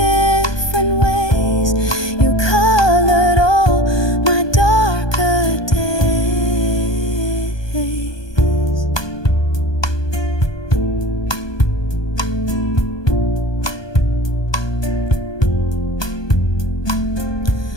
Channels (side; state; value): right; late; 1.2 ms